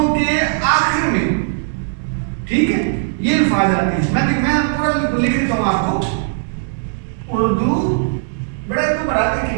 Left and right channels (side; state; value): left; silent; 67 dB below the other